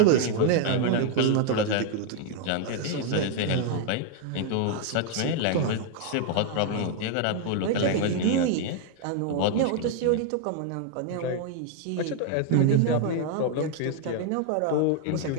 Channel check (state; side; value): different; both; correlation 0.00